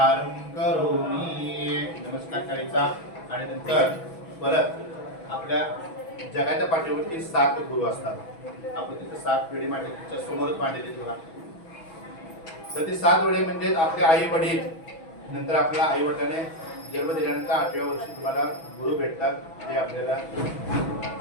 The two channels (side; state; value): right; late; 6.1 ms